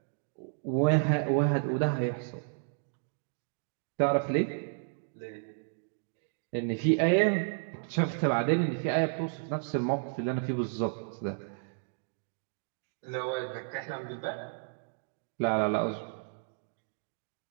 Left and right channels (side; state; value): left; silent; digital silence